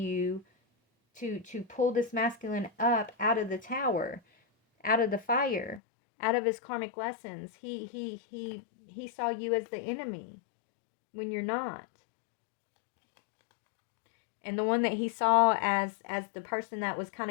to pull this masculine up out of the tower, out of the fire, out of his karmic lessons. He saw you as the enemy when you're not. And the one that he saw as the person that was kind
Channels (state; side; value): drops out; right; at 5.8 s